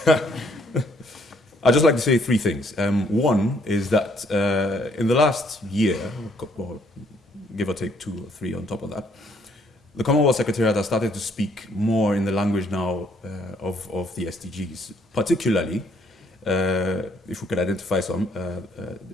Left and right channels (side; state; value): both; normal; correlation 0.67